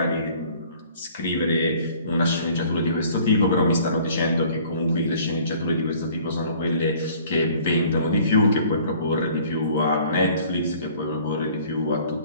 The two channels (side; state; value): both; inverted; correlation -0.53